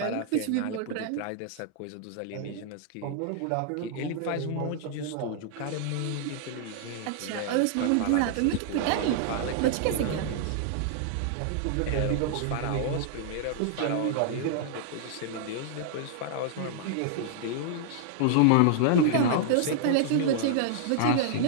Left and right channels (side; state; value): both; different; correlation -0.01